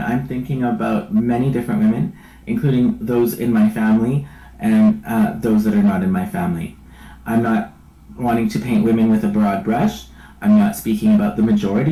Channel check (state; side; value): identical; both; correlation 1.00